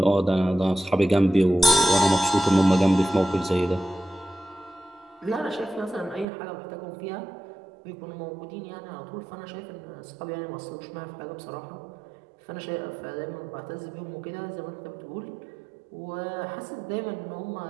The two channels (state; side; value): drops out; left; at 6.2 s